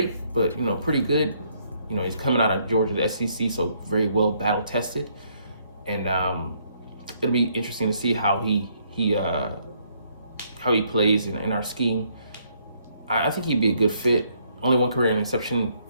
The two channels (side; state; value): both; inverted; correlation -0.70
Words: but pretty good. He's coming out of Georgia, the SEC, so very well battle tested, and it'll be interesting to see how he plays in our scheme. I think he'd be a good fit. Only one career interception